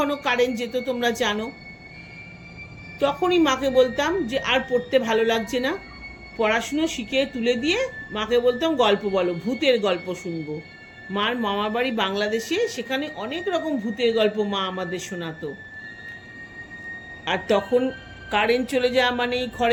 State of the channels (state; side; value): identical; both; correlation 1.00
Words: কারেন্ট যেত, তোমরা জানো। তখনই মাকে বলতাম যে আর পড়তে ভালো লাগছে না, পড়াশুনো শিখে তুলে দিয়ে মাকে বলতাম গল্প বলো, ভূতের গল্প শুনবো। মার মামার বাড়ি বাংলাদেশে, সেখানে অনেক রকম ভূতের গল্প মা আমাদের শোনাতো। আর তখন কারেন্ট চলে যাওয়া মানেই